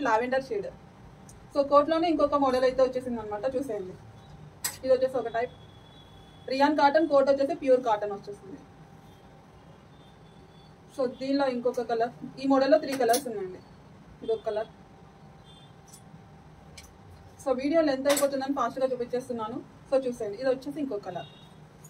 లావెండర్ షేడ్. సో కోట్ లోనే ఇంకొక మోడల్ అయితే వచ్చేసింది అనమాట. చూసేయండి, ఇది వచ్చేసి ఒక టైప్ రియాన్ కాటన్. కోట్ వచ్చేసి ప్యూర్ కాటన్ వచ్చేసింది. సో దీనిలో ఇంకొక కలర్. ఈ మోడల్లో 3 కలర్స్ ఉన్నాయండి. ఇది ఒక కలర్. సో వీడియో లెంత్ అయిపోతుందని ఫాస్ట్గా చూపించేస్తున్నాను. సో చూసేయండి, ఇది వచ్చేసి ఇంకో కలర్.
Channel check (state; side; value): identical; both; correlation 1.00